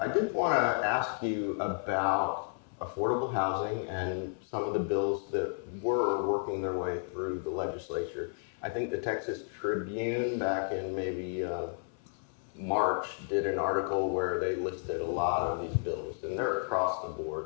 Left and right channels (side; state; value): right; silent; 55 dB below the other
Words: I did want to ask you about affordable housing and some of the bills that were working their way through the legislature. I think the Texas Tribune back in maybe March did an article where they listed a lot of these bills, and they're across the